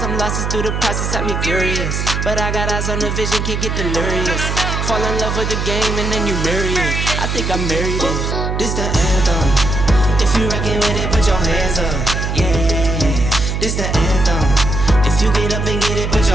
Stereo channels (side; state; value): right; noise; hum, 1 dB below the sound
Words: losses through the process had me furious. But I got eyes on the vision, can't get delirious. Fall in love with the game and then you marry it. I think I married it. This the anthem. If you rockin' with it, put your hands up. Yeah, this the anthem. If you get up and get it, put